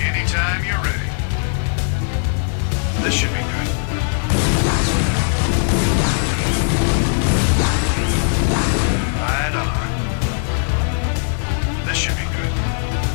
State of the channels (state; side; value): silent; right; 67 dB below the other